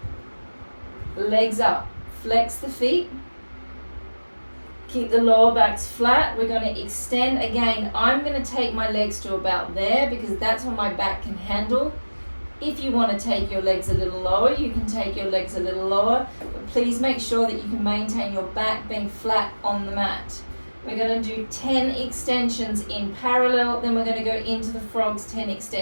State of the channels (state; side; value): inverted; both; correlation -1.00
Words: Legs up, flex the feet. Keep the lower backs flat. We're going to extend again. I'm going to take my legs to about there because that's what my back can handle. If you want to take your legs a little lower, you can take your legs a little lower, but please make sure that you can maintain your back being flat on the mat. We're going to do 10 extensions in parallel, then we're going to go into the frogs, 10